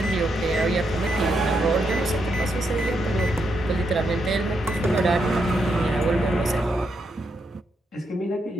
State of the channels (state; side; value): normal; both; correlation 0.81